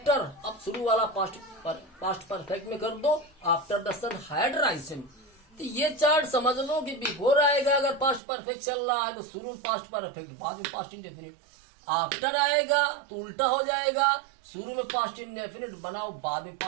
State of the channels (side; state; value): left; drops out; at 8.2 s